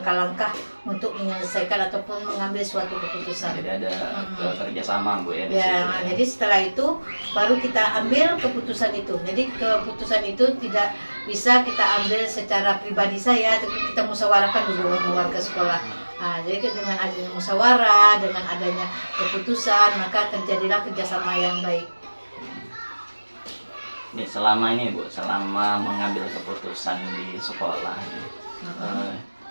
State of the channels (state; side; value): inverted; both; correlation -1.00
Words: untuk menyelesaikan ataupun mengambil suatu keputusan. Jadi ada kerjasama, Bu, ya? Jadi setelah itu baru kita ambil keputusan itu. Jadi keputusan itu tidak bisa kita ambil secara pribadi saya, tapi kita musyawarahkan dulu dengan warga sekolah. Jadi dengan adanya musyawarah, dengan adanya keputusan, maka terjadilah kerjasama yang baik. Nih, selama ini, Bu, selama mengambil keputusan di sekolah,